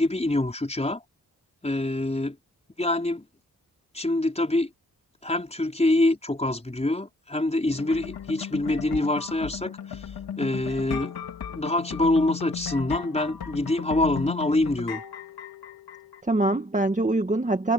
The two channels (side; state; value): both; normal; correlation 0.65